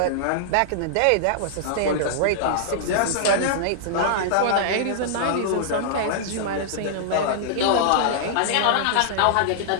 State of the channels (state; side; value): different; both; correlation -0.01